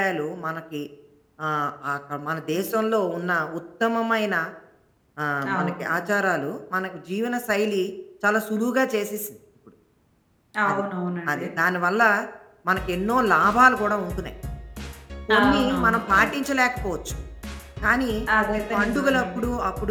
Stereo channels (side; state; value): both; identical; correlation 1.00